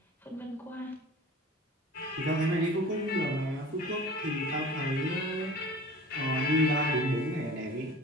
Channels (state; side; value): normal; both; correlation 0.41